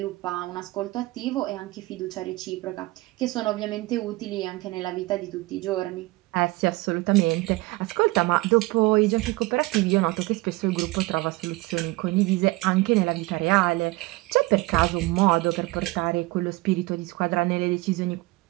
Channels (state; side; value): quieter; left; 21.6 dB